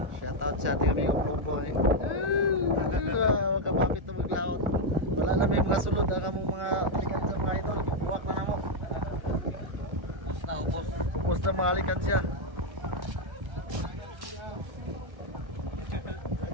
Shoutout sa ating aming buhay. Huwag ka mapit na maglaot. Wala na may mga sulod. Ang mong mga likan siya mga idol. Buwak na mo. Ubus na ubos. Ubos na mga likan siya.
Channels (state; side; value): late; left; 1.4 ms